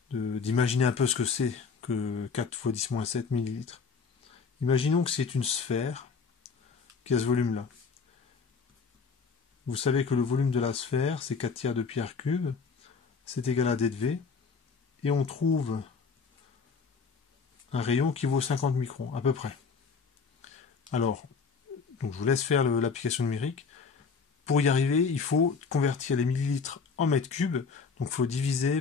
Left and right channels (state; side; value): quieter; right; 5.2 dB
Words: d'imaginer un peu ce que c'est que 4 fois 10-7 millilitres. Imaginons que c'est une sphère qui a ce volume-là. Vous savez que le volume de la sphère, c'est 4 tiers de pierre cube. C'est égal à D de V. Et on trouve un rayon qui vaut 50 microns, à peu près. Alors, donc je vous laisse faire l'application numérique. Pour y arriver, il faut convertir les millilitres en mètres cubes. Donc il faut